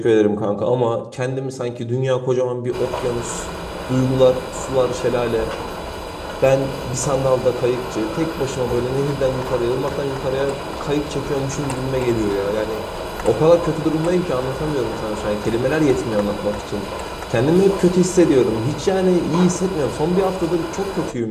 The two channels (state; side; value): identical; both; correlation 1.00